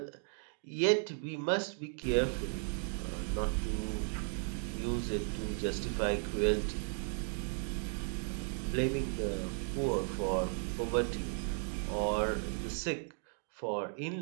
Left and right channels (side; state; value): left; silent; 54 dB below the other